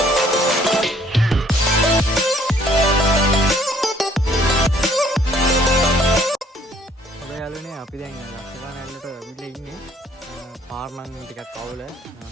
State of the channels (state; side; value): normal; both; correlation 0.61